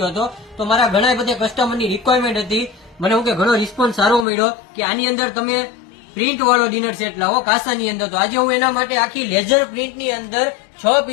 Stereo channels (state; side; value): drops out; right; at 4.2 s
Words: હતો, તો મારા ઘણા બધા કસ્ટમરની રિક્વાયરમેન્ટ હતી. મને હું કે ઘણો રિસ્પોન્સ સારો મળ્યો કે આની અંદર તમે પ્રિન્ટ વાળો ડિનર સેટ લાવો કાસાની અંદર. તો આજે હું એના માટે આખી લેઝર પ્રિન્ટની અંદર 6